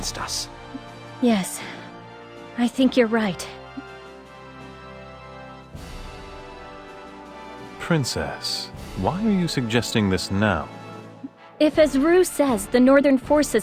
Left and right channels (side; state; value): both; identical; correlation 1.00